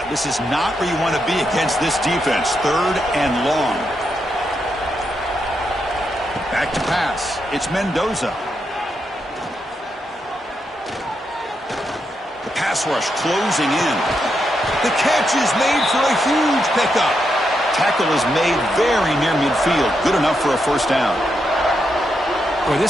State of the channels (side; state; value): both; normal; correlation 0.83